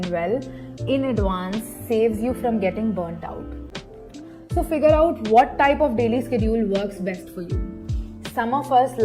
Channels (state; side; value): identical; both; correlation 1.00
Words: well in advance saves you from getting burnt out. So figure out what type of daily schedule works best for you. Some of us